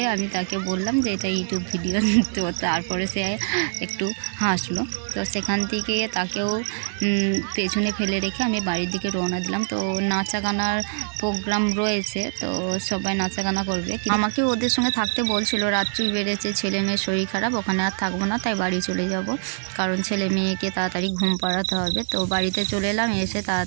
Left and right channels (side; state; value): left; silent; 63 dB below the other